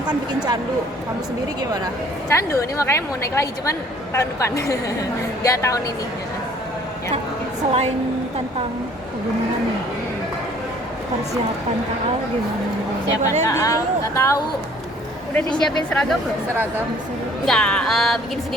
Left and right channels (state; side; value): normal; both; correlation 0.56